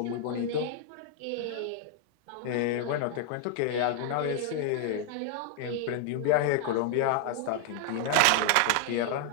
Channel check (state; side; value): different; both; correlation 0.00